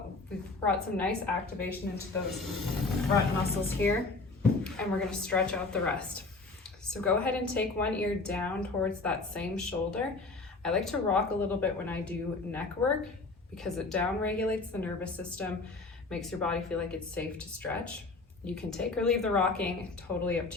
we've brought some nice activation into those front muscles here, and we're gonna stretch out the rest. So go ahead and take one ear down towards that same shoulder. I like to rock a little bit when I do neck work because it down regulates the nervous system, makes your body feel like it's safe to stretch. You can take or leave the rocking, totally up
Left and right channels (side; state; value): right; quieter; 3.6 dB